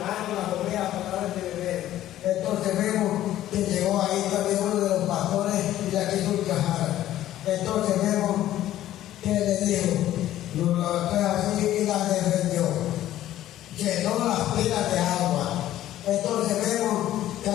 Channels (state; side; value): quieter; right; 13.3 dB